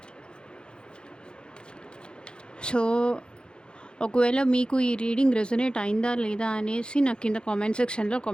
సో ఒకవేళ మీకు ఈ రీడింగ్ రెజొనేట్ అయిందా లేదా అనేసి నాకు కింద కామెంట్ సెక్షన్లో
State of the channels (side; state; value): right; late; 0.050 ms